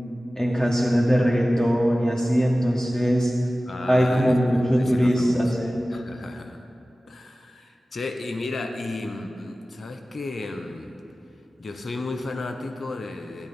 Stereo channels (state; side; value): normal; both; correlation 0.96